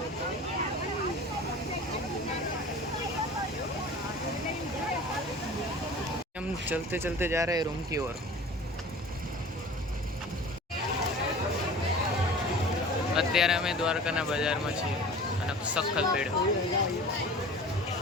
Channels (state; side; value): normal; both; correlation 0.41